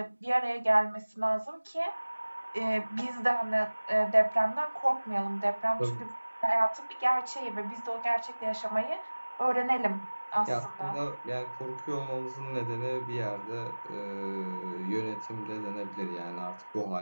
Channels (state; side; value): inverted; both; correlation -1.00